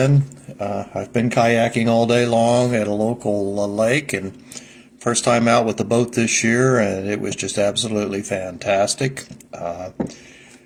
I've been kayaking all day long at a local lake, and first time out with the boat this year, and it was just absolutely fantastic.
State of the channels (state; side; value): identical; both; correlation 1.00